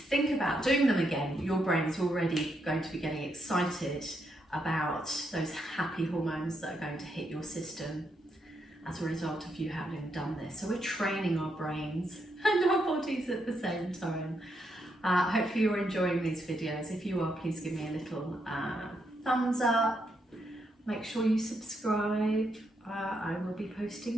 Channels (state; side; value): normal; both; correlation 0.79